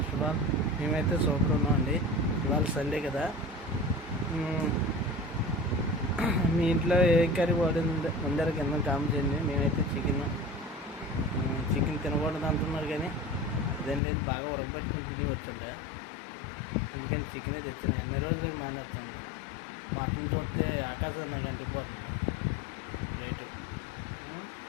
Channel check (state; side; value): drops out; right; at 14.0 s